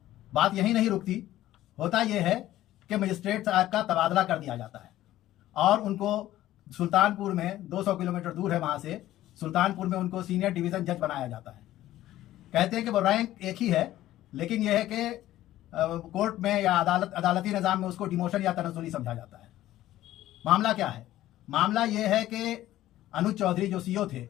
बात यही नहीं रुकती, होता यह है कि मजिस्ट्रेट साहब का तबादला कर दिया जाता है और उनको सुल्तानपुर में, 200 किलोमीटर दूर है वहाँ से, सुल्तानपुर में उनको सीनियर डिवीज़न जज बनाया जाता है। कहते हैं कि वो रैंक एक ही है, लेकिन यह है कि कोर्ट में या अदालती निज़ाम में उसको डिमोशन या तनज़्ज़ुली समझा जाता है। मामला क्या है? मामला यह है कि अनुज चौधरी जो सीईओ थे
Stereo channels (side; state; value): right; quieter; 14.3 dB